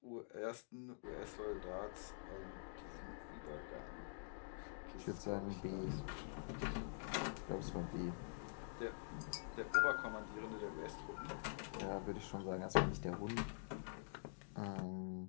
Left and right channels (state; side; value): silent; right; digital silence